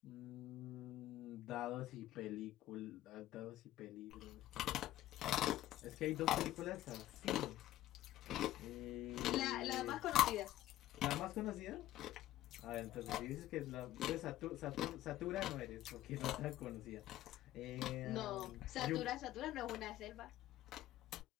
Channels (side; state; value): right; quieter; 14.4 dB